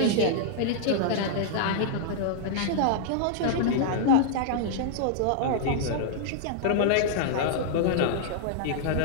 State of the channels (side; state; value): both; different; correlation -0.01